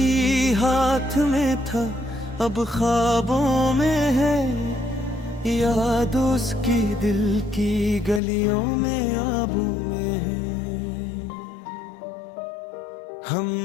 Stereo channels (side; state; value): right; drops out; at 8.2 s